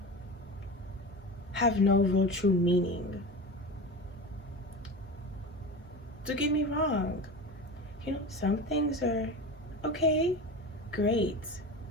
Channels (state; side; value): normal; both; correlation 0.28